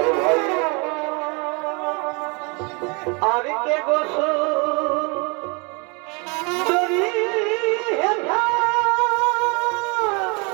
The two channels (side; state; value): left; quieter; 31.9 dB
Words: ভাই আর কে গোসল দরি হেঠা